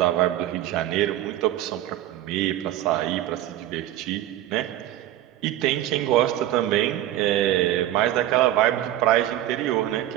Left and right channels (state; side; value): quieter; left; 13.4 dB